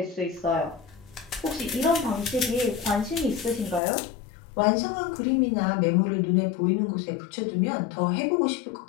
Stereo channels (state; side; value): drops out; right; at 3.8 s